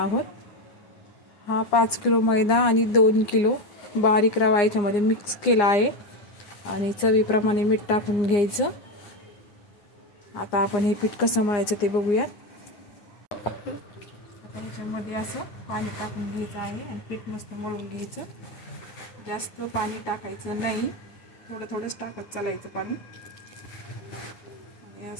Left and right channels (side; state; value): right; late; 9.7 ms